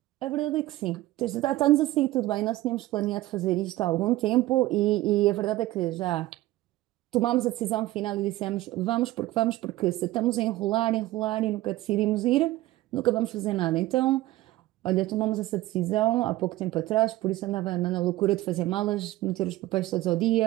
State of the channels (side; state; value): left; quieter; 16.8 dB